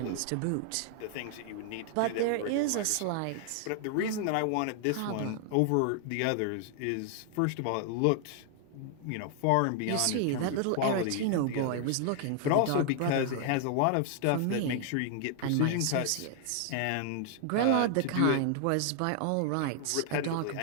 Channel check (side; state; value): both; different; correlation 0.00